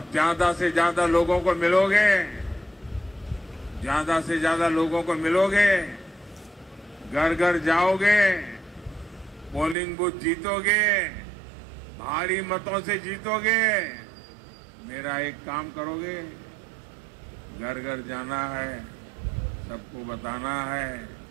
ज्यादा से ज्यादा लोगों को मिलोगे, ज्यादा से ज्यादा लोगों को मिलोगे, घर घर जाओगे, पोलिंग बूथ जीतोगे, भारी मतों से जीतोगे। मेरा एक काम करोगे, घर घर जाना है, सबको बताना है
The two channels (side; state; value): left; drops out; at 9.8 s